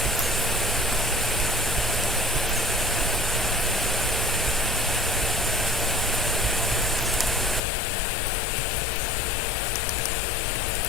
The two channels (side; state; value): right; drops out; at 7.6 s